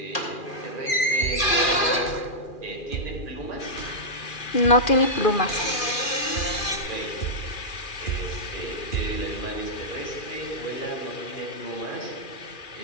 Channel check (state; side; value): late; right; 2.4 ms